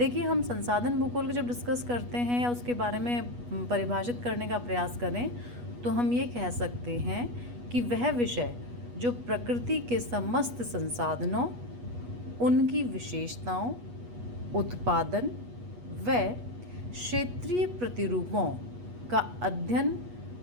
हम संसाधन भूगोल को जब डिस्कस करते हैं या उसके बारे में परिभाषित करने का प्रयास करें तो हम ये कह सकते हैं कि वह विषय जो प्रकृति के समस्त संसाधनों, उनकी विशेषताओं, उत्पादन व क्षेत्रीय प्रतिरूपों का अध्ययन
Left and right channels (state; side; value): late; left; 8.3 ms